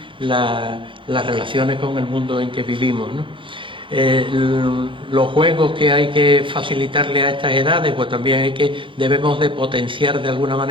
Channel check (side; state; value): left; late; 0.25 ms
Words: las relaciones con el mundo en que vivimos, ¿no? Los juegos que hay que facilitarle a estas edades, pues también debemos de potenciar de alguna